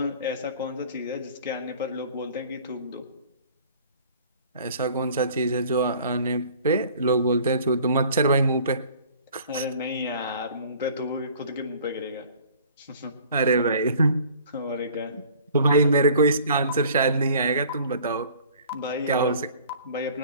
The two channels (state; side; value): inverted; both; correlation -0.50